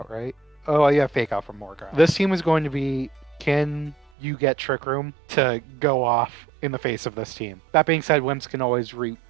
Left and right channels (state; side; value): drops out; left; at 4.1 s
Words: right? Oh, you have Fake Out from Morgrowth. This team is going to be, can you get Trick Room to go off in the face of this team? That being said, Wims can always